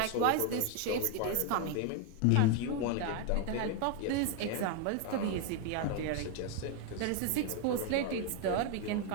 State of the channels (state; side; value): different; both; correlation 0.01